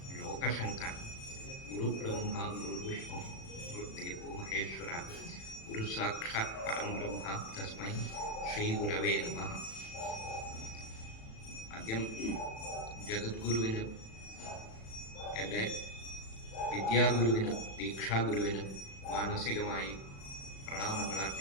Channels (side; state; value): right; late; 36 ms